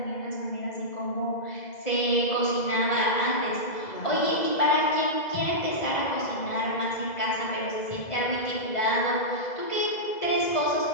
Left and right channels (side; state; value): right; late; 2.0 ms